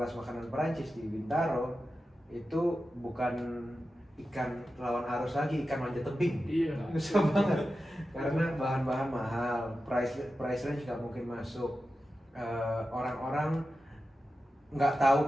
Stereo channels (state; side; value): normal; both; correlation 0.92